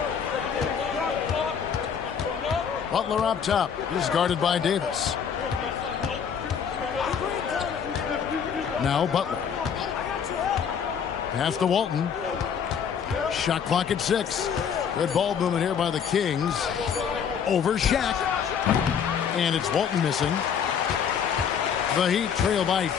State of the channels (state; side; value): quieter; right; 7.4 dB